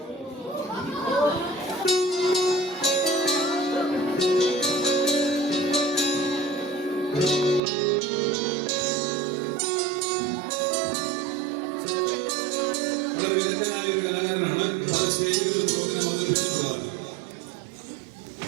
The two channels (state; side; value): drops out; left; at 7.6 s